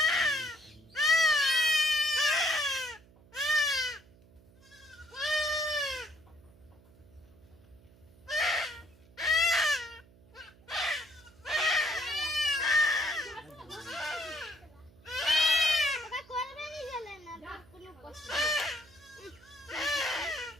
ওটা করবে নি গেলে না কোনো কষ্ট নেই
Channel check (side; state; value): right; noise; hum, 26 dB below the sound